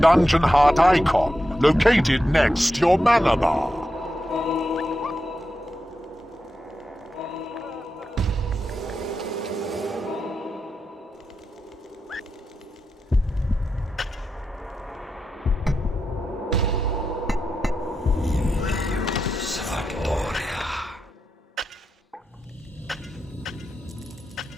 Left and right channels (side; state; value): both; normal; correlation 0.88